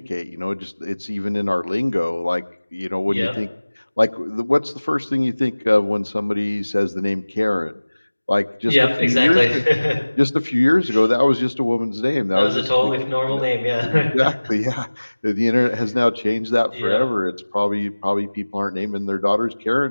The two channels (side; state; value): both; inverted; correlation -1.00